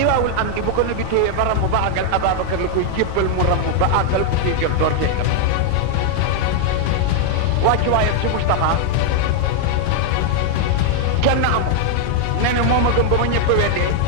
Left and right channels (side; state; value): both; different; correlation 0.00